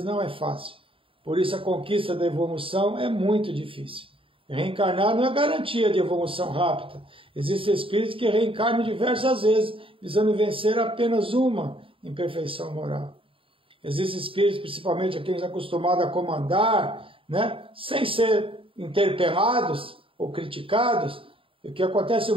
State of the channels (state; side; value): late; left; 0.26 ms